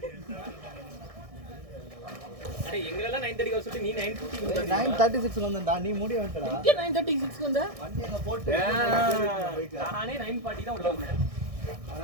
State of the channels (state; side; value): late; left; 1.6 ms